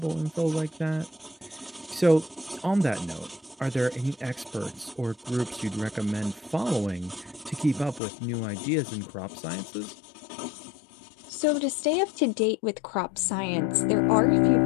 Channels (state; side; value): drops out; right; at 8.0 s